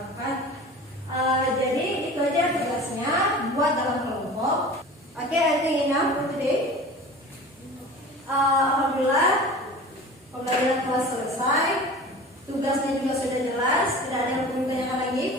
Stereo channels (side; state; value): both; normal; correlation 0.38